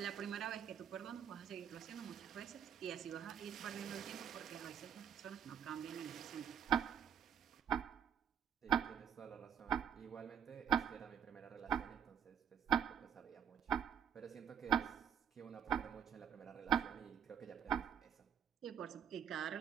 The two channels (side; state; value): left; quieter; 8.5 dB